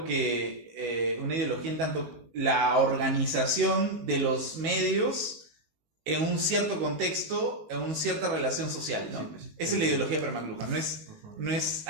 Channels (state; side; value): late; left; 18 ms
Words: que una ideología en tanto la organización de los medios en un cierto contexto, en una cierta relación social, ¿no? Sí, pues. Esa es la ideología para McLuhan, no es